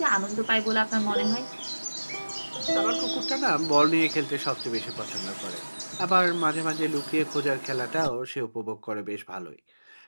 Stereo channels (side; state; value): both; inverted; correlation -1.00